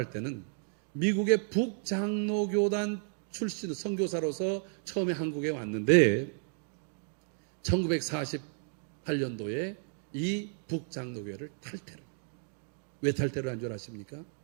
때는 미국의 북장로교단 출신 선교사로서 처음에 한국에 왔는데 1948년도에 이 북장로교회를 탈퇴를. 왜 탈퇴를 한 줄 아십니까?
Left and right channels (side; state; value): left; silent; 56 dB below the other